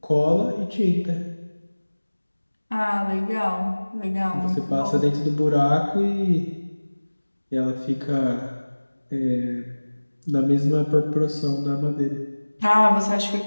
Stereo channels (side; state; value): both; inverted; correlation -1.00